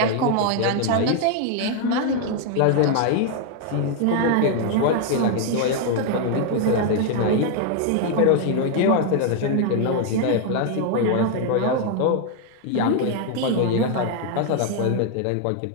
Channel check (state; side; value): different; both; correlation 0.00